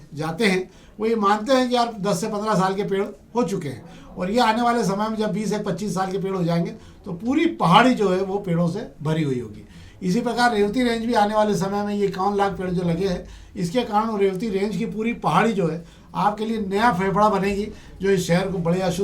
जाते हैं वो ये मानते हैं कि यार 10 से 15 साल के पेड़ हो चुके हैं, और ये आने वाले समय में जब 20 से 25 साल के पेड़ हो जाएंगे तो पूरी पहाड़ी जो है वो पेड़ों से भरी हुई होगी। इसी प्रकार रेवती रेंज भी आने वाले समय में ये 51 लाख पेड़ जो लगे हैं, इसके कारण रेवती रेंज की पूरी पहाड़ी जो है आपके लिए नया फेफड़ा बनेगी, जो इस शहर को बड़ी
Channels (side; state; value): both; identical; correlation 1.00